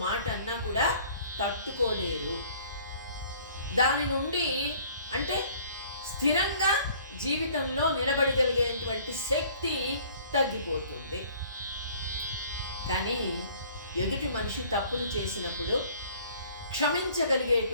మాట అన్నా కూడా తట్టుకోలేరు. దాని నుండి అంటే స్థిరంగా జీవితంలో నిలబడగలిగేటువంటి శక్తి తగ్గిపోతుంది. కానీ ఎదుటి మనిషి తప్పులు చేసినప్పుడు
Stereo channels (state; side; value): inverted; both; correlation -0.54